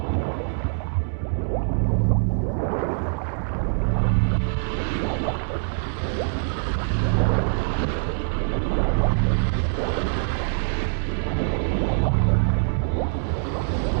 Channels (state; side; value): silent; left; digital silence